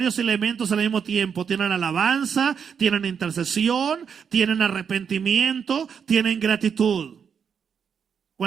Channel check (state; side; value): quieter; left; 7.0 dB